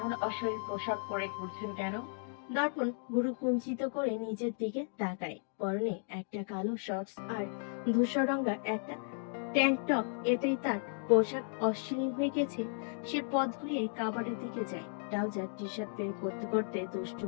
অশরীর পোশাক পরে ঘুরছেন কেন? দর্পণ ভুরু কুঞ্চিত করে নিজের দিকে তাকায়। পরনে একটা কালো শর্টস আর ধূসর রঙা একটা ট্যাঙ্ক টপ, এতেই তার পোশাক অশ্লীল হয়ে গেছে। সে পথ ঘুরিয়ে কাবারের দিকে যায়। ট্রাউজার টি শার্ট বের করতে করতে দুষ্টু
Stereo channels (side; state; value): right; silent; 55 dB below the other